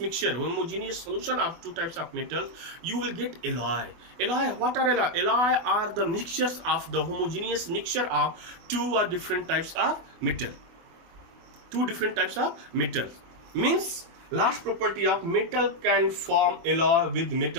homogeneous solution of two types of metals, you will get alloy. Alloy, what are alloy? Alloy are the mixtures of the homogeneous mixture of two or different types of metal. Two different types of metals. Means last property of metal can form alloy with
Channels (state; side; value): late; left; 24 ms